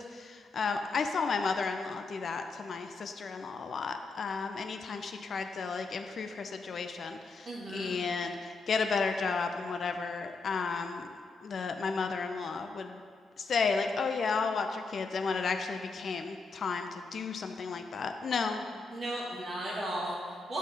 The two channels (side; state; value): right; quieter; 4.1 dB